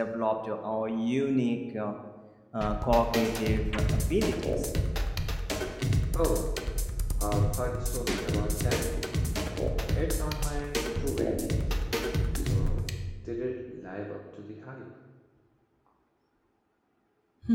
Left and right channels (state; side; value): identical; both; correlation 1.00